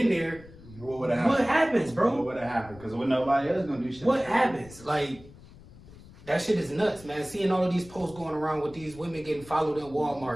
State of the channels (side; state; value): left; noise; rumble, 20 dB below the sound